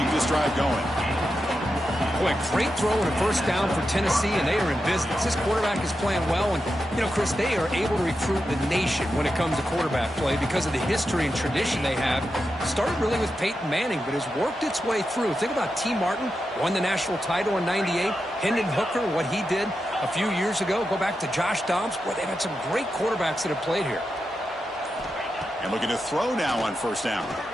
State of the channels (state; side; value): normal; both; correlation 0.88